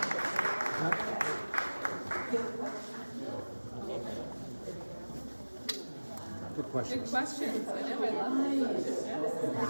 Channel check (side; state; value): both; inverted; correlation -1.00